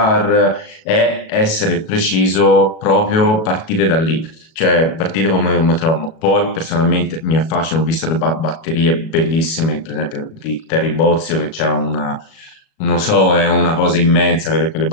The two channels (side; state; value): right; late; 37 ms